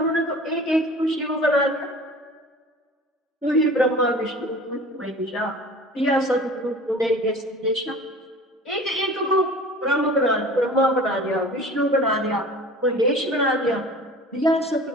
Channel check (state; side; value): normal; both; correlation 0.42